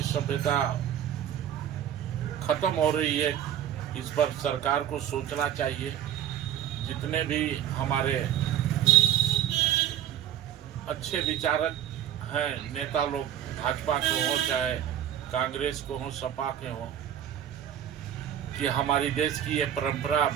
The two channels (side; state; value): left; quieter; 10.6 dB